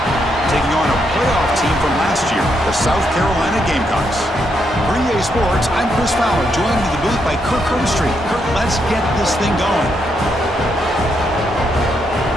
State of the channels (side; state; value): both; normal; correlation 0.78